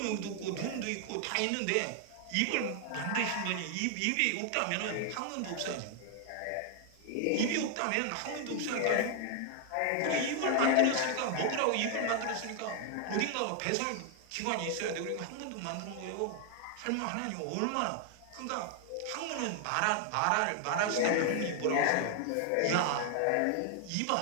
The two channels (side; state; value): both; different; correlation 0.00